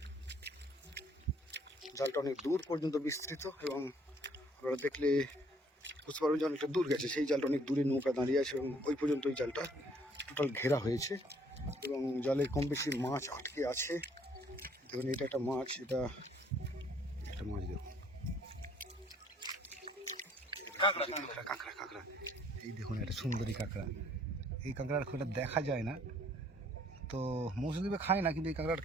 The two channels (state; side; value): normal; both; correlation 0.62